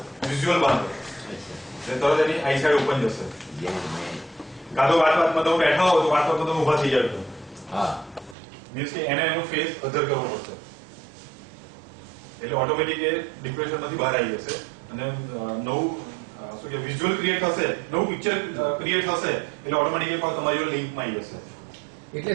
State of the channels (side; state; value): left; drops out; at 8.3 s